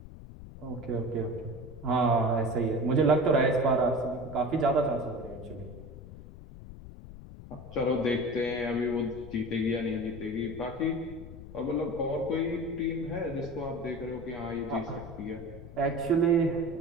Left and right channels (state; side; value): noise; left; rumble, 14 dB below the sound